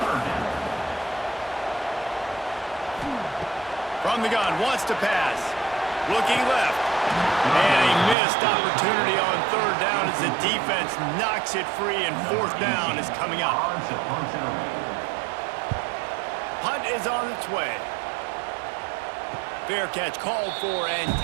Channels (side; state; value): left; drops out; at 8.2 s